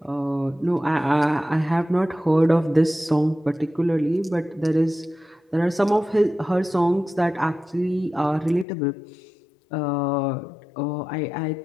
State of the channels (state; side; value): drops out; right; at 8.7 s